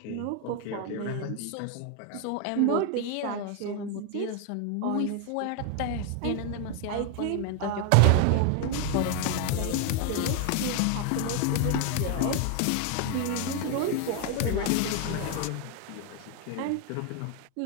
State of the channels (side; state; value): both; different; correlation 0.01